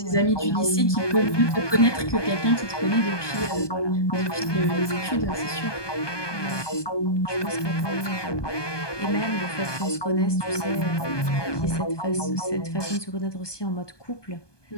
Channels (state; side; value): late; right; 1.2 ms